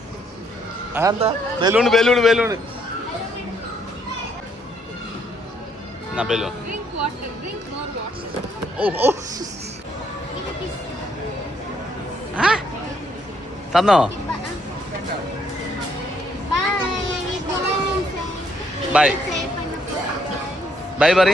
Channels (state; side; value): normal; both; correlation 0.70